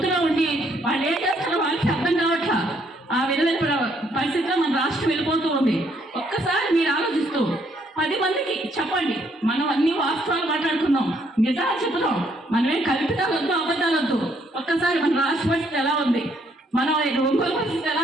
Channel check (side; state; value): both; normal; correlation 0.69